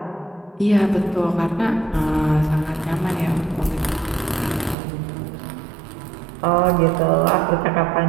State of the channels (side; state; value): left; drops out; at 4.8 s